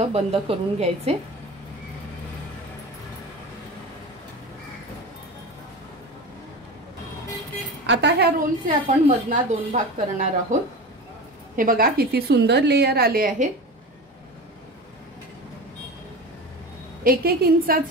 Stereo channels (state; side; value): normal; both; correlation 0.29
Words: बंद करून घ्यायचे। आता ह्या रोलचे आपण मधना 2 भाग करणार आहोत। हे बघा किती सुंदर लेयर आले आहेत। 1-1